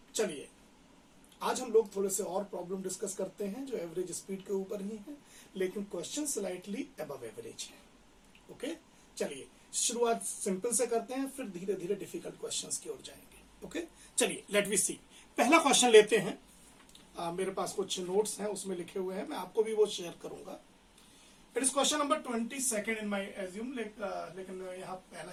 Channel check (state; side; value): identical; both; correlation 1.00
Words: चलिए, आज हम लोग थोड़े से और प्रॉब्लम डिस्कस करते हैं जो एवरेज स्पीड के ऊपर ही है, लेकिन क्वेश्चन स्लाइटली अबव एवरेज है। ओके, चलिए शुरुआत सिंपल से करते हैं, फिर धीरे धीरे डिफिकल्ट क्वेश्चंस की ओर जाएंगे। ओके, चलिए लेट वी सी। पहला क्वेश्चन लेते हैं। मेरे पास कुछ नोट्स हैं, उसमें लिखे हुए हैं, मैं आपको भी वो शेयर करूंगा। It is question number 22 in my assume, लेकिन यहाँ पहला